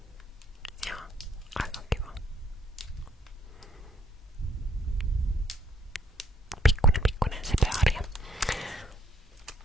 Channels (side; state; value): both; normal; correlation 0.66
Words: Joo, aika kiva. Pikkunen söpö harja.